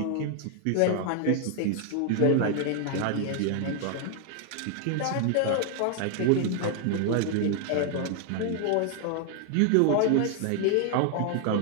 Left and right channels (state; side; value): different; both; correlation 0.00